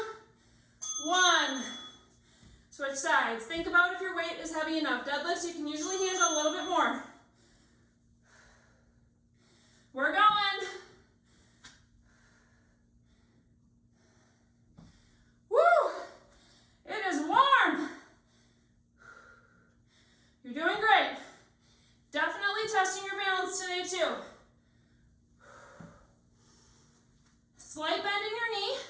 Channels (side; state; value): both; identical; correlation 1.00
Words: one. Switch sides. Think about if your weight is heavy enough. Deadlifts, you can usually handle a little bit more. We're going. Woo! It is warm. You're doing great. Definitely testing your balance today too. Slight bend in your knee.